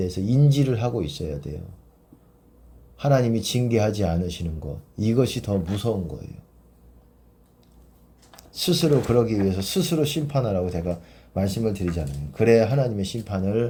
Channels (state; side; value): identical; both; correlation 1.00